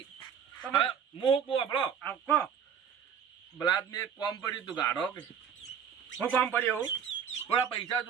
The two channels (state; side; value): quieter; left; 7.7 dB